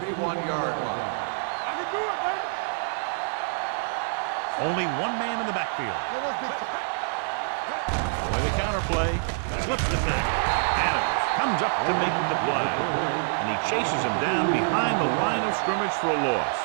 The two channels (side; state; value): left; silent; digital silence